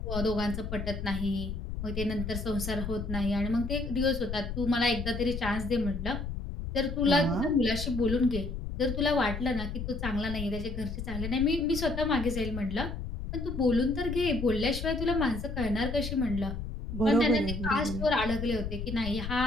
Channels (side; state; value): left; noise; rumble, 6 dB below the sound